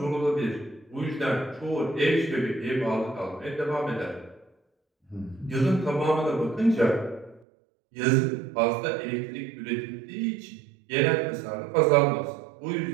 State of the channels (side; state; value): left; drops out; at 7.4 s